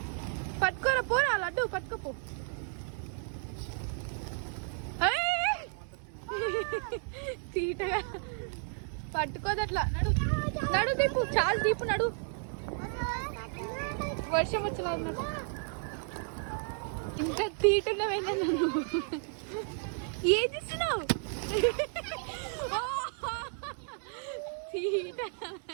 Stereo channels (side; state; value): left; silent; 56 dB below the other